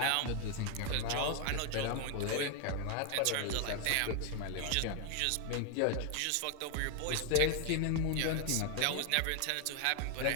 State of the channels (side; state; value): both; different; correlation 0.01